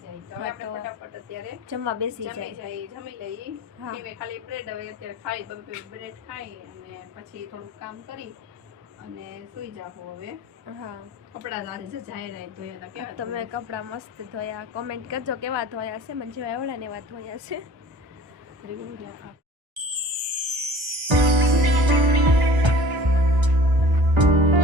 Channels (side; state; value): left; late; 1.3 ms